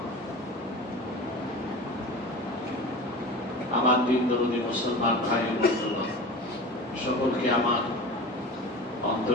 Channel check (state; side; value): normal; both; correlation 0.33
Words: আমার দিন দরদি মুসলমান ভাই ও বন্ধুরা, সকলকে আমার